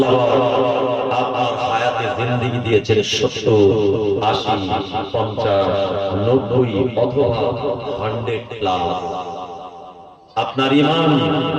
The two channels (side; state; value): both; identical; correlation 1.00